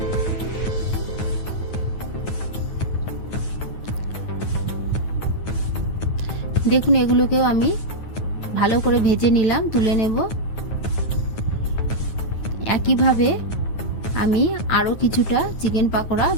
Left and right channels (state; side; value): late; right; 9.4 ms